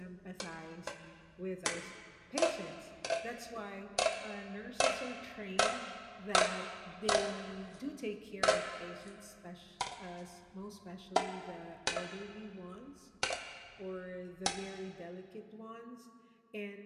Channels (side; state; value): both; identical; correlation 1.00